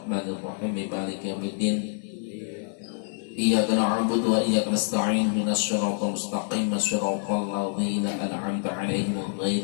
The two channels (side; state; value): right; silent; 60 dB below the other